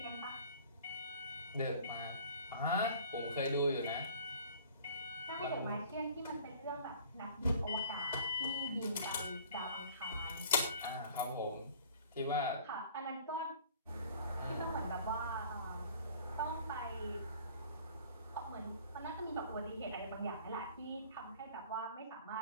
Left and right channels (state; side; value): inverted; both; correlation -0.50